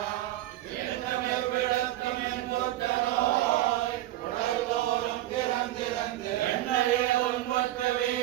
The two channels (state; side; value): quieter; left; 15.0 dB